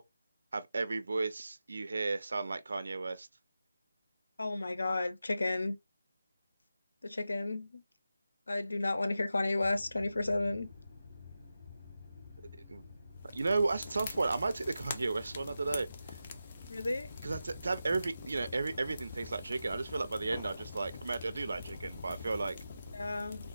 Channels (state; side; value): inverted; both; correlation -0.92